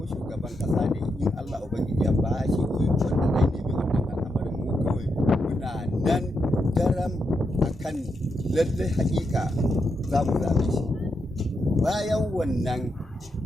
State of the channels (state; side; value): normal; both; correlation 0.83